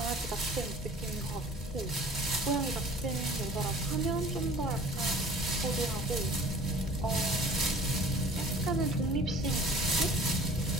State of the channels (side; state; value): both; normal; correlation 0.48